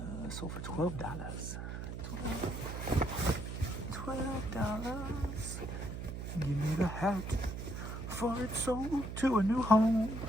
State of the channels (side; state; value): right; noise; hum, 6 dB below the sound